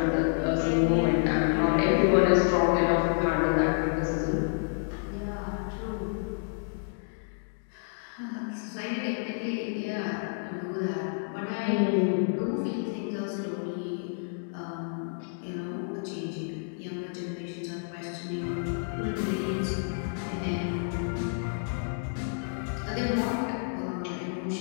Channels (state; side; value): silent; right; digital silence